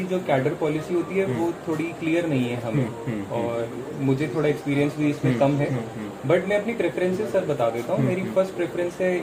जो कैडर पॉलिसी होती है वो थोड़ी क्लियर नहीं है हमें, और मुझे थोड़ा एक्सपीरियंस भी इसमें कम है। बट मैं अपनी प्रेफरेंसेस सर बता देता हूँ। मेरी फर्स्ट प्रेफरेंस है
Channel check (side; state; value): both; identical; correlation 1.00